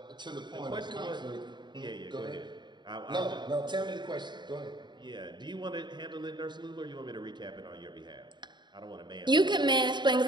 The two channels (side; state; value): left; late; 0.22 ms